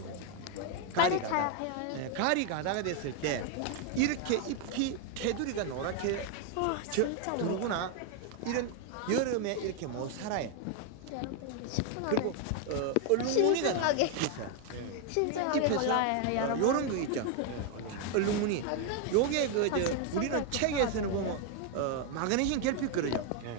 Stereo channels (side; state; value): both; different; correlation 0.01